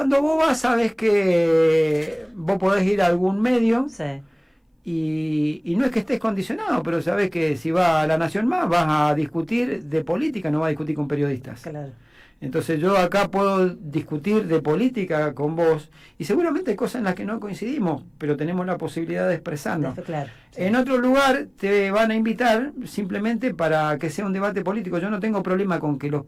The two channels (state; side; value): identical; both; correlation 1.00